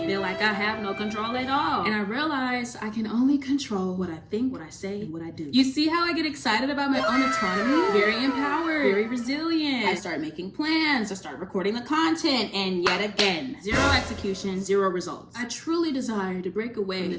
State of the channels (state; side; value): identical; both; correlation 1.00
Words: feel like I have no control at all. And I realize I can only control what I think, what I say, and what I do. You see how I get excited about my own autonomy? Very empowered, very resilient. I start making plans, I start recording the content, and yet again, zero execution, zero results. I truly desire to break away from